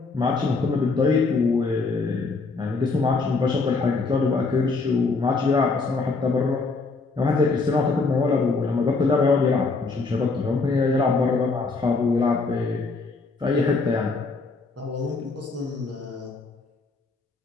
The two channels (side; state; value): right; quieter; 4.0 dB